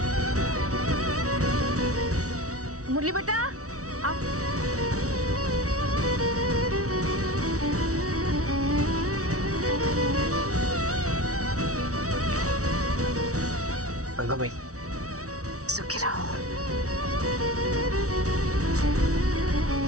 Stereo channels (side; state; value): left; late; 0.65 ms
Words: मुरली बेटा आओ। गंगा भाई, सुखी रहो।